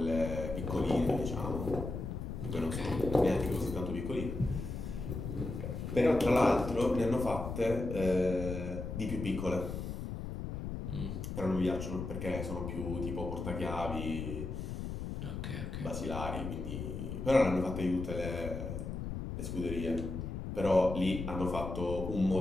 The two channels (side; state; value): left; noise; rumble, 5 dB below the sound